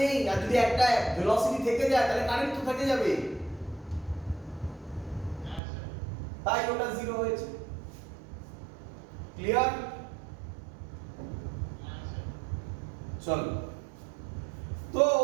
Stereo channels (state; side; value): drops out; left; at 5.6 s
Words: আর যদি একটা ভেলোসিটি থেকে যায় তাহলে কারেন্ট তো থেকে যাবে, তাই ওটা 0 হয়েছে। ক্লিয়ার? চলো, তো